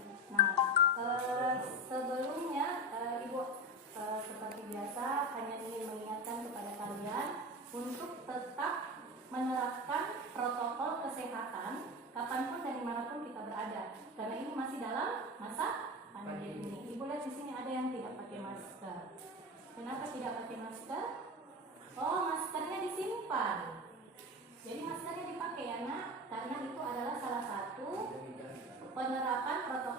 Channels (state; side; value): normal; both; correlation 0.23